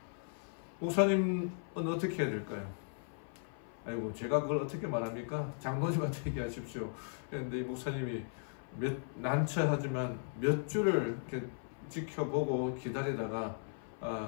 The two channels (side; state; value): right; silent; 53 dB below the other